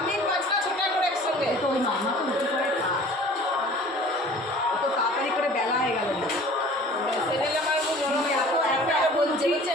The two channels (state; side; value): normal; both; correlation 0.46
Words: 5টা 6টা করে একসঙ্গে তো ওই মামা তো রুটি করে খায়, অত তাড়াতাড়ি করে বেলা হয়ে গেল না। সেদিন আমার গরম এত বলছে